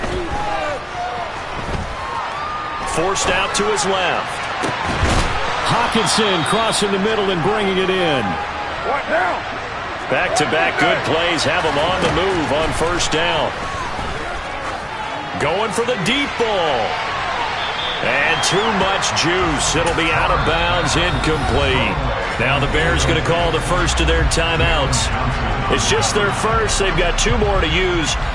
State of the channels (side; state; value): both; identical; correlation 1.00